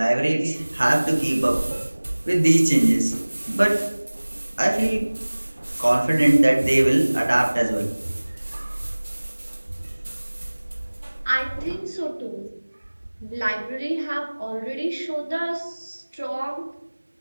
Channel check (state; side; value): inverted; both; correlation -1.00